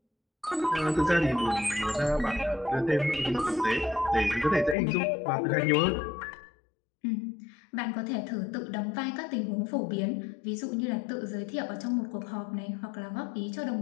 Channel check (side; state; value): right; drops out; at 4.8 s